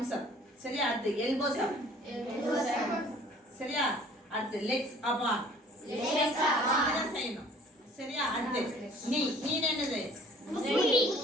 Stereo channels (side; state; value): both; normal; correlation 0.53